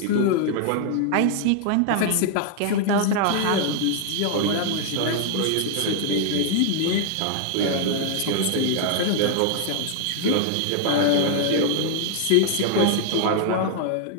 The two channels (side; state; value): both; different; correlation -0.01